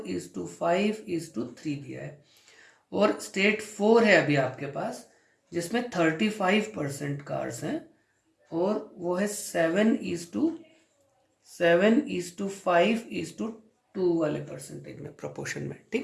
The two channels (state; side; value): identical; both; correlation 1.00